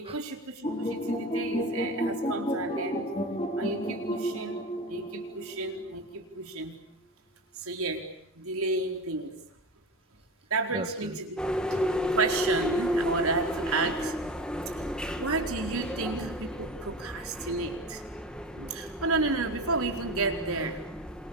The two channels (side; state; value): both; normal; correlation 0.28